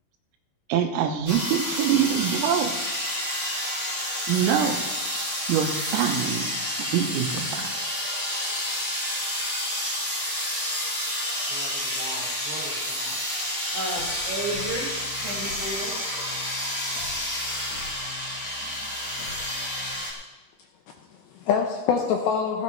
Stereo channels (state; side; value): normal; both; correlation 0.00